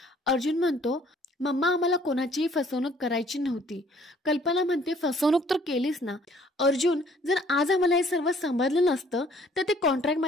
अर्जुन म्हणतो, मम्मा आम्हाला कोणाचीही फसवणूक करायची नव्हती. कल्पना म्हणते, फसवणूक तर केलीस ना. अर्जुन, जर आज आम्हाला हे सर्व समजलं नसतं तर ते कॉन्ट्रॅक्ट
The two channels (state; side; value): normal; both; correlation 0.59